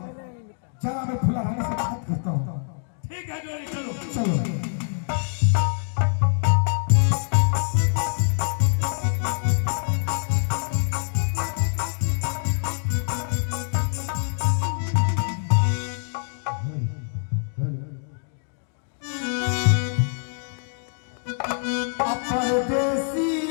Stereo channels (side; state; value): right; silent; digital silence